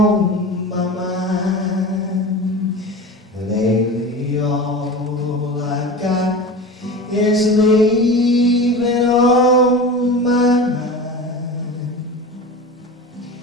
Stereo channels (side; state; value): both; normal; correlation 0.31